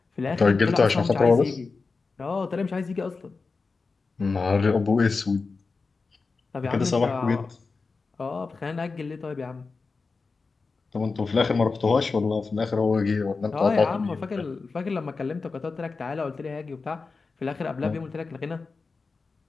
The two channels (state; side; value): quieter; right; 4.3 dB